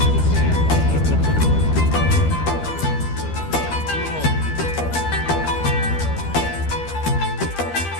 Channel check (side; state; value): right; late; 13 ms